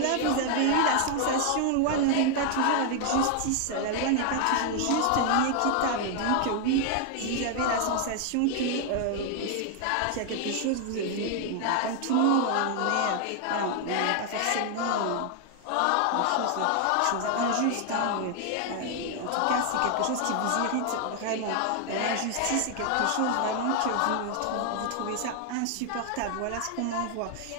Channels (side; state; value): both; different; correlation 0.00